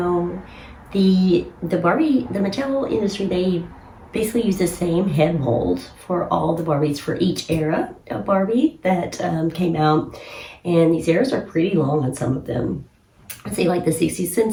the Mattel industry, they basically use the same head mold for all the Barbies for each era of Barbie that came out. And these eras are pretty long on some of them. I'd say like the 60s and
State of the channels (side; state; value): both; identical; correlation 1.00